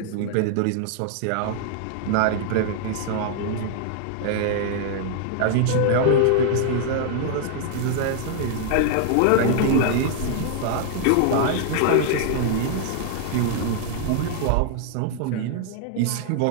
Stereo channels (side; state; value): both; different; correlation -0.01